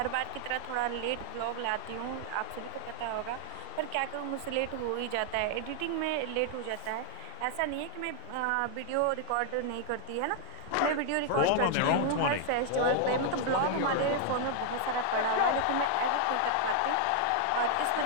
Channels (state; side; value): different; both; correlation 0.00